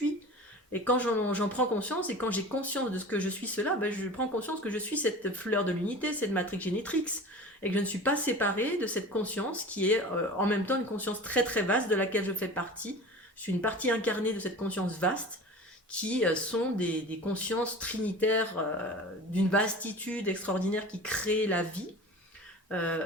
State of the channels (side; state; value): both; normal; correlation 0.36